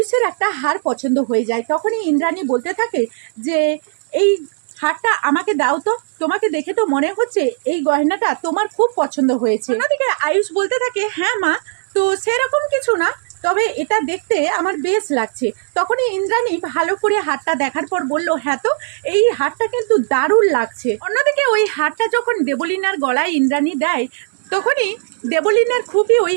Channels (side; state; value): left; silent; 68 dB below the other